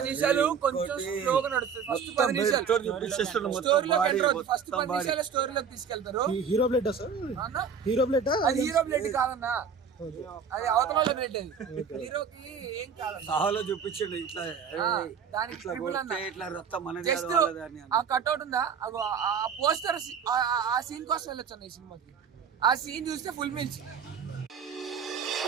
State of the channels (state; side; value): quieter; left; 6.6 dB